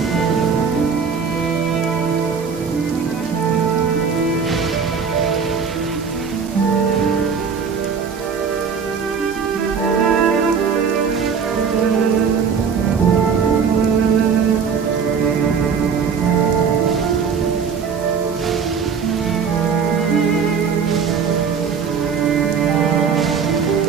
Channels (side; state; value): left; quieter; 6.2 dB